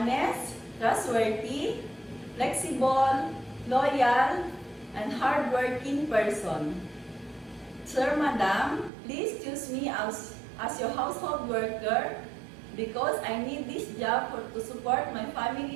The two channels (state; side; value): drops out; left; at 8.9 s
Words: trustworthy, flexible, loyal, and hardworking person. Sir, Madam, please choose me as your household worker because I need this job to support my